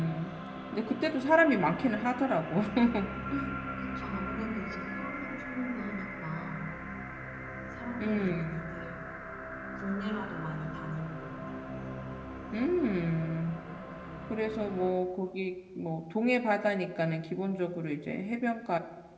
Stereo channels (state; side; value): identical; both; correlation 1.00